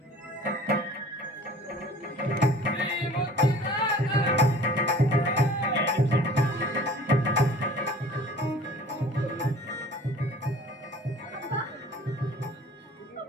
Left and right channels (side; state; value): both; normal; correlation 0.47